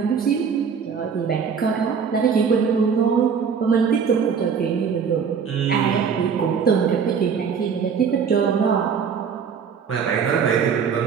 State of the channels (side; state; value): left; quieter; 6.6 dB